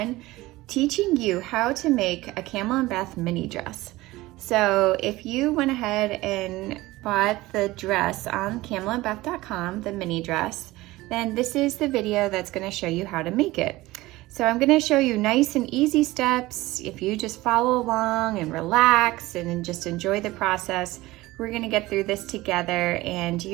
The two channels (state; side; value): quieter; left; 18.9 dB